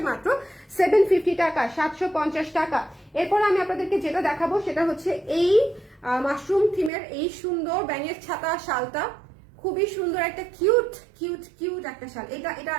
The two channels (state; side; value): drops out; left; at 6.9 s